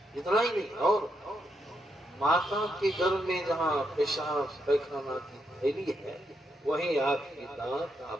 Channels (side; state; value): both; normal; correlation 0.80